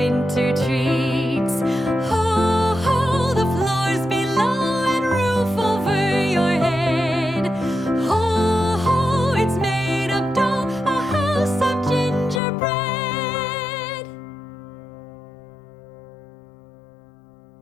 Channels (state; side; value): drops out; right; at 12.4 s